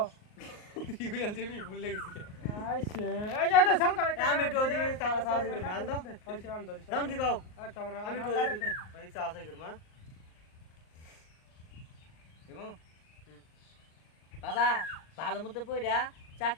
ইউএল জিবি ভুল লাগছে আইছে এই যে সাল করে আমি একটু ওদিকে সাহস করি মাল দাও আইছে আন ধরি দাও কি গাও আমি আমি একটু ওদিকে অনেক সাহস করি মা এবং বাবা ভালো মতো পয়রা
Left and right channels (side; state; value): right; late; 38 ms